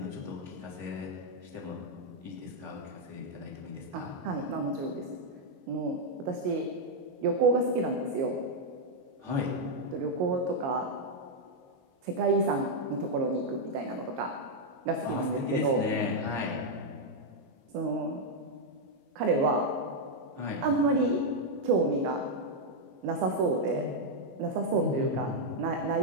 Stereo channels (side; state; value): left; late; 22 ms